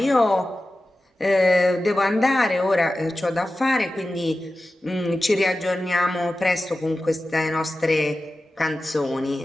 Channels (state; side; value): normal; both; correlation 0.94